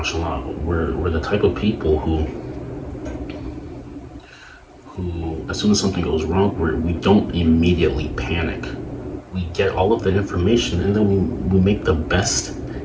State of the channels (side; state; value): both; identical; correlation 1.00